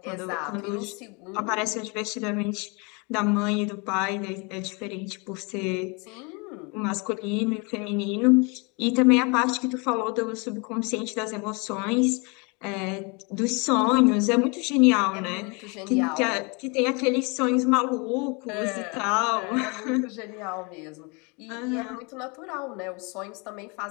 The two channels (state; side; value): quieter; right; 30.8 dB